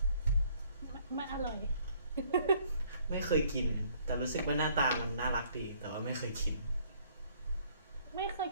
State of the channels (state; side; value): inverted; both; correlation -0.62